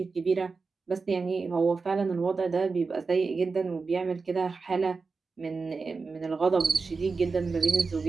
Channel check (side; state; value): left; quieter; 4.4 dB